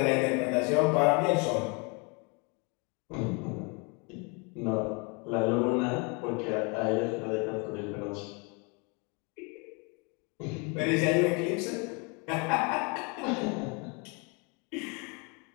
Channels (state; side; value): quieter; right; 32.2 dB